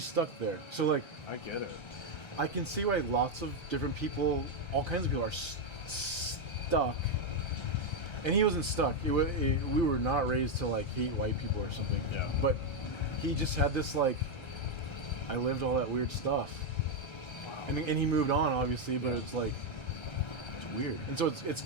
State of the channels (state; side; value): late; right; 1.3 ms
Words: stuck there. So, like, I get it. I can see why lots of different people, all kinds of people, are stuck. And he wasn't stuck. We were not raised to like hate white people or something. Yeah. But he just had this like, I lived all that weird stuff. Wow. And he moved on, obviously, but it's like, it's weird. And so it's